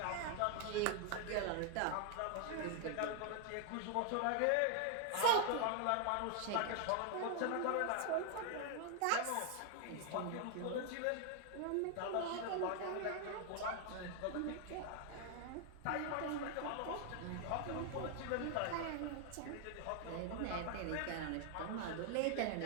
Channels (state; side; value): different; both; correlation 0.00